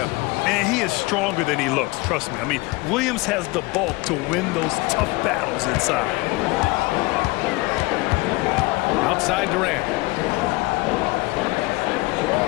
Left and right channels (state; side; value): quieter; right; 22.8 dB